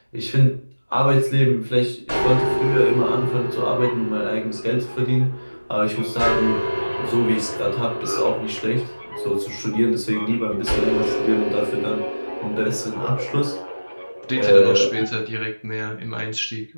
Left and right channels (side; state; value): both; inverted; correlation -1.00